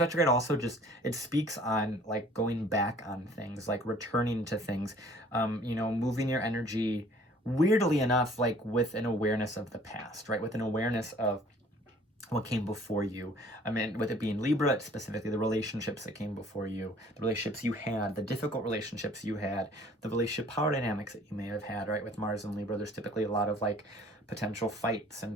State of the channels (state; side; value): normal; both; correlation 0.54